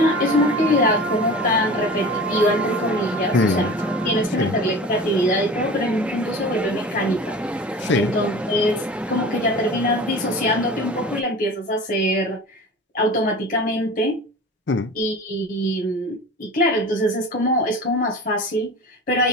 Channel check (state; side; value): normal; both; correlation 0.36